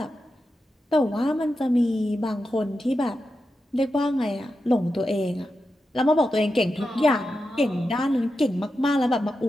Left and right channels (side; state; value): both; normal; correlation 0.89